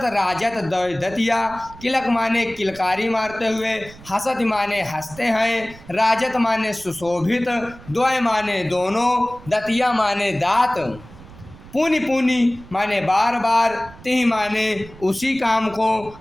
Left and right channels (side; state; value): right; noise; rumble, 19 dB below the sound